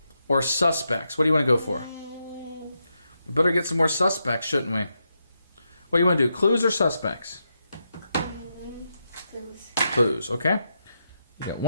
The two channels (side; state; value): both; inverted; correlation -0.84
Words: or suspects? What do you want to go for? We better get some more suspects, shouldn't we? What do you want to do? Clues or suspects? Clues. Clues, okay. You got